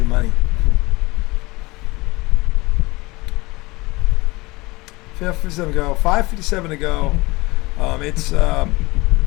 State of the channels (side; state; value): right; quieter; 22.5 dB